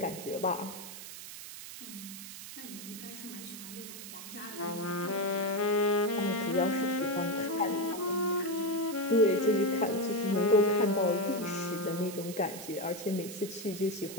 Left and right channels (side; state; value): right; noise; hiss, 11 dB below the sound